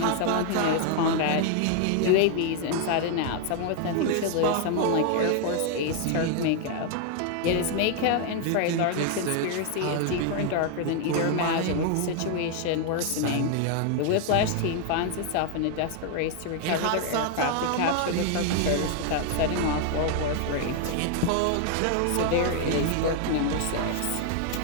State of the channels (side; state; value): both; different; correlation 0.00